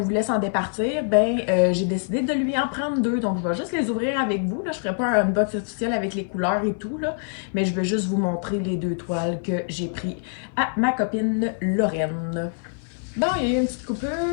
voulait s'en départir, ben j'ai décidé de lui en prendre deux. Donc, je vais juste les ouvrir avec vous. Là. Je ne ferai pas un unbox officiel avec les couleurs et tout, là, mais je vais juste vous montrer les deux toiles que j'ai pris à ma copine Lorraine. Bon, il y a eu une petite coupure,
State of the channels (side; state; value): right; silent; 57 dB below the other